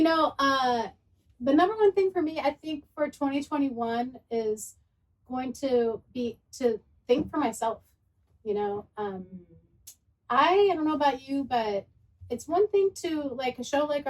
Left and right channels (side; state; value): both; identical; correlation 1.00